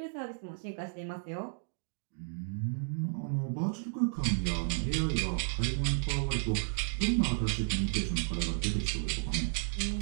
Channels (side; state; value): left; silent; digital silence